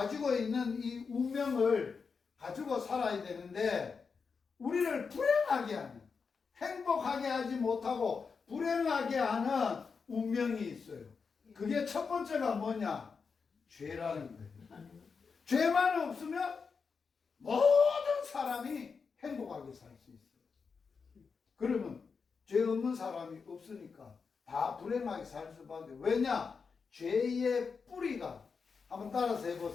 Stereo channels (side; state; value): right; quieter; 5.3 dB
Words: 있는 이 운명을 가지고 살아야 되는데 우리를 불행하게 하는, 행복하게 하지 못하고 불행하게 하는 운명이 있어요. 그게 첫 번째가 뭐냐? 죄라는 거예요. 죄만 없으면 모든 사람이 행복하게 살 수 있어요. 그러면 죄 없는 사람이 없으니까 다 불행하게 살 수밖에. 왜냐? 죄의 뿌리가, 한번 따라서